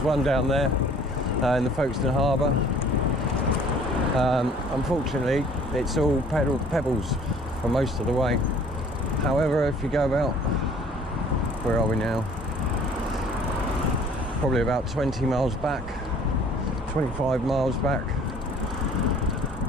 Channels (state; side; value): normal; both; correlation 0.53